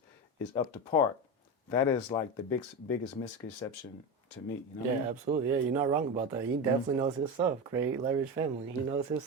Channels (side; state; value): both; normal; correlation 0.19